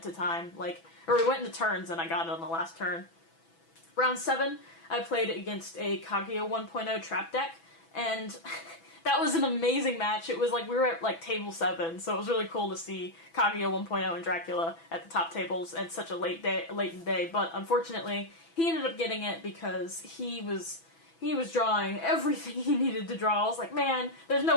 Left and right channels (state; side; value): late; right; 6.0 ms